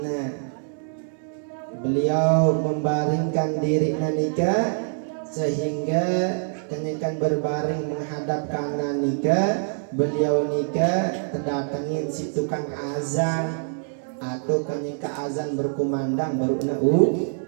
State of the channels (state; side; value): silent; left; digital silence